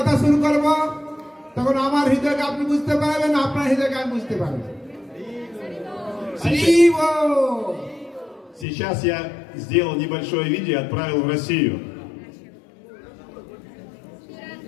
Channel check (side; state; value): right; drops out; at 8.7 s